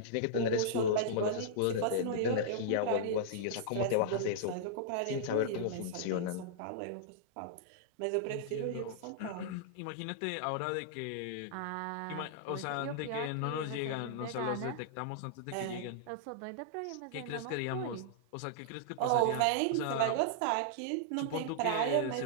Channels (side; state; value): both; different; correlation -0.02